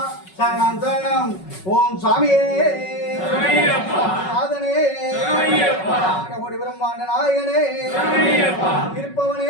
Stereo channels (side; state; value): right; late; 5.4 ms